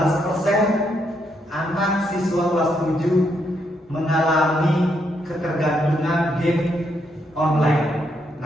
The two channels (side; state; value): both; normal; correlation 0.77